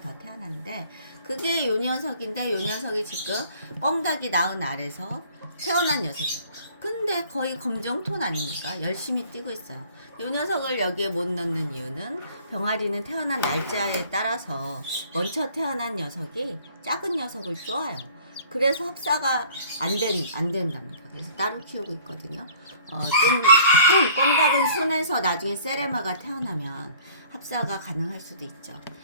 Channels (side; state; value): both; inverted; correlation -0.54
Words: 더 태어났는데 그게 요 녀석인데 요 녀석이 지금 꽁닭이 낳은 알에서 태어난 녀석이에요. 근데 거의 검정톤 아닙니까? 열심히 뛰고 있어요. 이 녀석을 여기에 못 넣는 이유는 병아리는 태어난 날짜에 따라서 먼저 태어난 녀석이 작은 녀석을 쪼아요. 그래서 합사가 안 된답니다. 그래서 따로 키우고 있거든요. 좀 꽁닭은 순해서 나중에 세레마가 태어나면 합사가 가능할 수도 있죠.